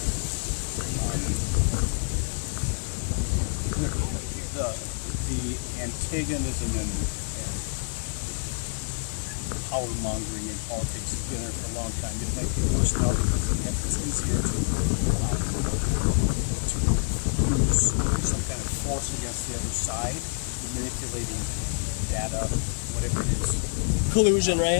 The antagonism and power mongering in politics has been there for a long time. It might be worse now because it's easier to use some kind of force against the other side, manipulating data, whatever it is. Collusion,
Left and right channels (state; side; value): silent; right; 58 dB below the other